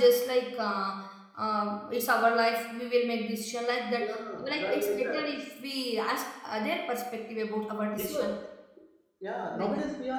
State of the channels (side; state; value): both; identical; correlation 1.00